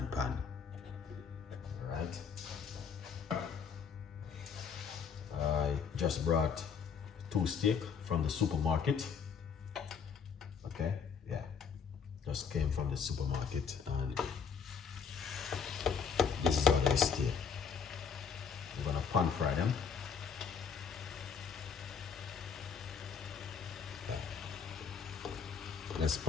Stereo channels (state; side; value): quieter; right; 6.5 dB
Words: pan. Alright. I just brought 2 steak from the supermarket. Okay, yeah. Just came from the supermarket and this is how they stay. We're gonna pan fry them. Okay. Let's